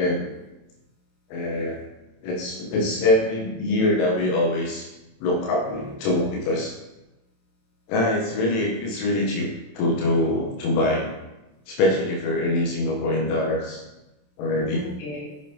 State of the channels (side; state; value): right; late; 27 ms